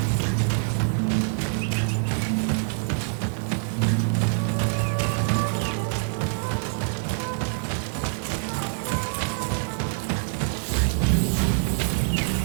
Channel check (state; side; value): silent; left; digital silence